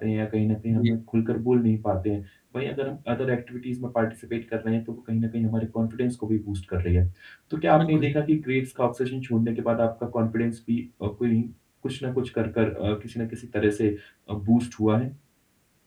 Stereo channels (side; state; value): both; identical; correlation 1.00